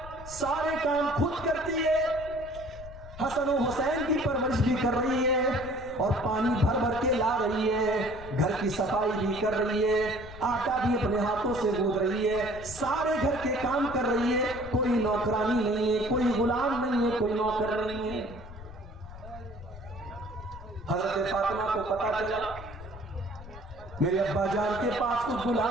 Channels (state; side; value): noise; left; rumble, 15 dB below the sound